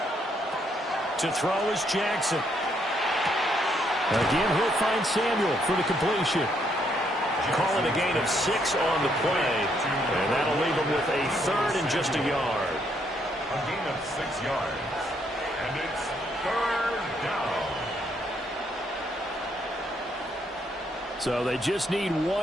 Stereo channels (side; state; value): both; normal; correlation 0.73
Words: To throw is Jackson. Again, he'll find Samuel for the completion. Call it a gain of 6 on the play, and that'll leave him with a third and just a yard. A gain of 6 yards, and it's third down. So they just need